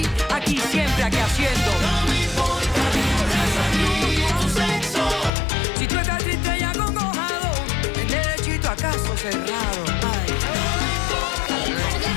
Aquí siempre, aquí haciendo. No me importa ni tu raza ni tu sexo. Si tú estás triste y acongojado, en derechito a caso cerrado. Ay. No me importa ni tu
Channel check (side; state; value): right; drops out; at 5.3 s